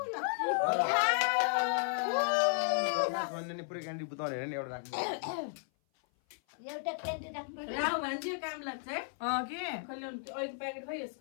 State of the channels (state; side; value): silent; right; 55 dB below the other